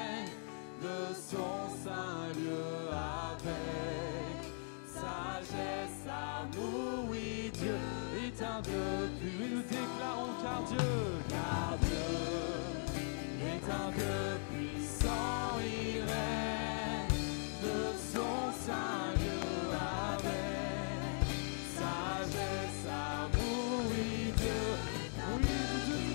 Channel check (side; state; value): right; silent; 52 dB below the other